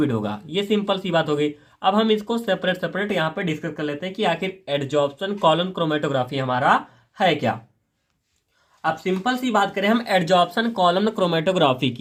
होगा। ये सिंपल सी बात हो गई। अब हम इसको सेपरेट सेपरेट यहाँ पे डिस्कस कर लेते हैं कि आखिर एडजॉर्प्शन कॉलम क्रोमेटोग्राफी हमारा है क्या। अब सिंपल सी बात करें हम एडजॉर्प्शन कॉलम क्रोमेटोग्राफी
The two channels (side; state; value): both; identical; correlation 1.00